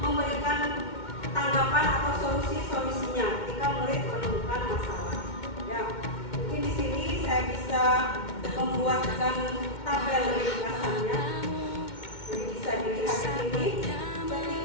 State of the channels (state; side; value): late; right; 2.1 ms